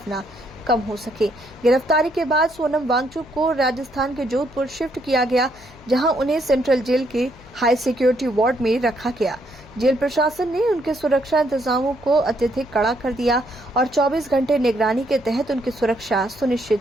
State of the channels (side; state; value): left; noise; hum, 23 dB below the sound